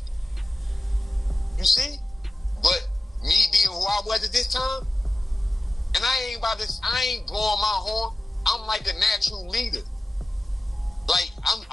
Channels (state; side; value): normal; both; correlation 0.95